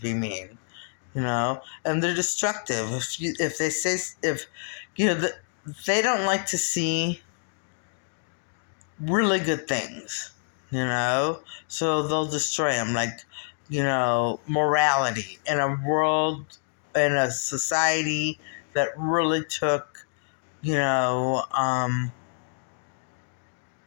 mean, and they're destructive. If they say, if, they don't like to see really good things, so they'll destroy them, like, morality in a world, in a society that really took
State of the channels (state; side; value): silent; right; digital silence